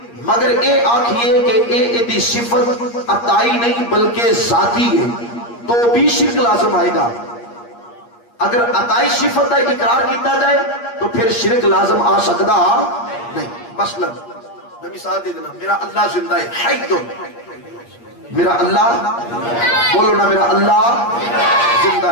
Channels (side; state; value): right; late; 8.5 ms